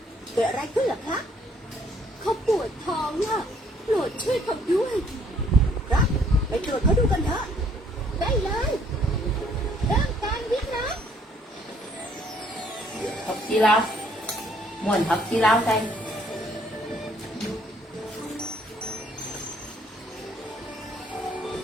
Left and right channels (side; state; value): both; normal; correlation 0.63